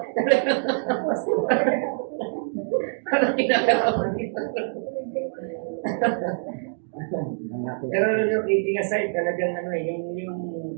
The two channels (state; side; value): silent; left; digital silence